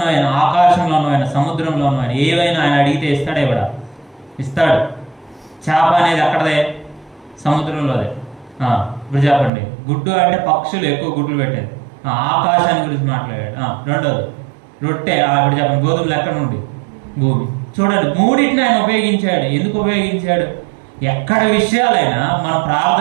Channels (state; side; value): drops out; left; at 9.5 s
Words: ఆకాశంలో ఉన్నవైన, సముద్రంలో ఉన్నవైన ఏవైనా ఆయన అడిగితే ఇస్తాడే ఇవ్వడా? ఇస్తాడు. చేప అనేది అక్కడదే, సముద్రంలోదే. ఇప్పుడు చెప్పండి, గుడ్డు అంటే పక్షులు ఎక్కువ గుడ్లు పెట్టేది, ఆకాశాన్ని గురించి మాట్లాడాడు. రెండోది రొట్టె, ఇప్పుడు చెప్పండి, గోధుమలు ఎక్కడ నుండి? భూమి. చూడండి, మూడింటిని ఆయన ఉపయోగించాడు. ఎందుకు ఉపయోగించాడు? ఎక్కడ విషయాలైనా మనం